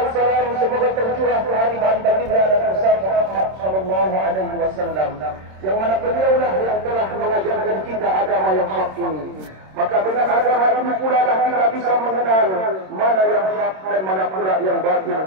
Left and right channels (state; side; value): late; left; 26 ms